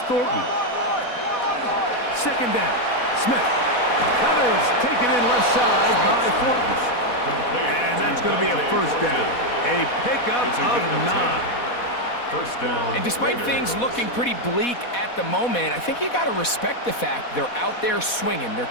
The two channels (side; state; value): right; late; 4.1 ms